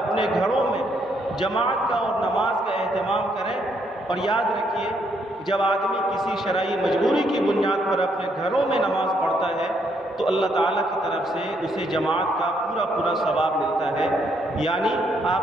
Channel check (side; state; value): both; normal; correlation 0.73